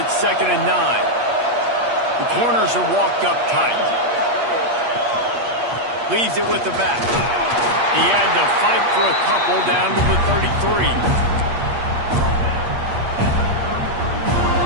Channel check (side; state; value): left; late; 8.5 ms